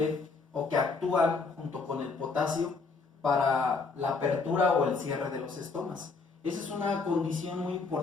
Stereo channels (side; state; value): right; quieter; 4.4 dB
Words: o que actúan junto con el potasio para la apertura o el cierre de los estomas. Esa es una condición muy